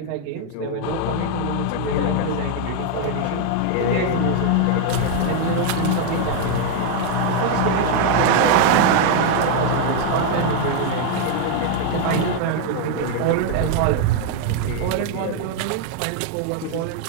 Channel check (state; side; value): different; both; correlation 0.01